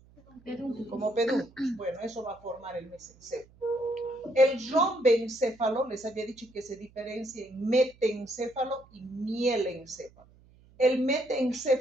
Como pedúnculos. Bueno, eso va a formar el mesencéfalo. El rombencéfalo, les había dicho que se diferencia en metencéfalo y mielencéfalo. El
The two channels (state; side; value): noise; right; hum, 27 dB below the sound